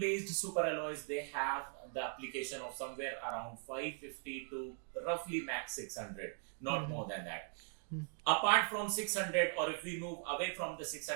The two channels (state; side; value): silent; left; 51 dB below the other